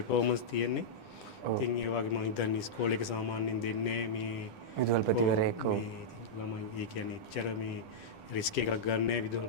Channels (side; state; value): right; late; 10 ms